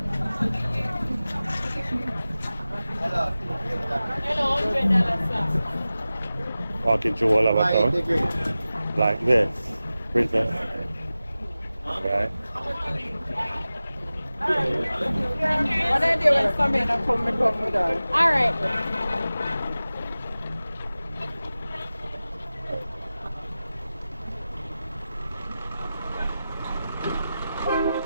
Walking through all of our town. Like this. Princess. Right. What I do when somebody come with her? Alright.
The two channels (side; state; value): both; inverted; correlation -0.96